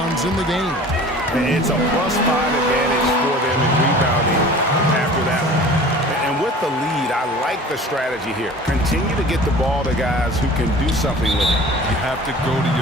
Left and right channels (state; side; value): normal; both; correlation 0.43